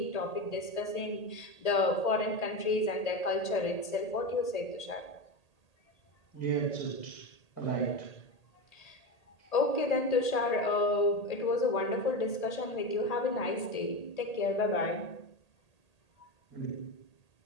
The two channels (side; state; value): right; late; 1.8 ms